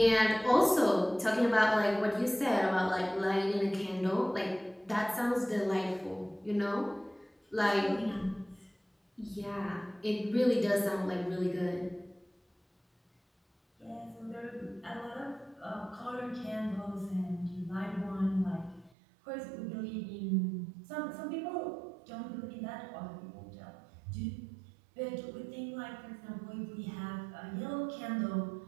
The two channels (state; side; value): drops out; left; at 18.9 s